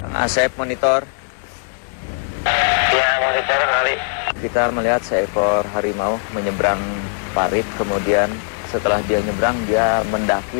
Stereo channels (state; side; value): silent; right; digital silence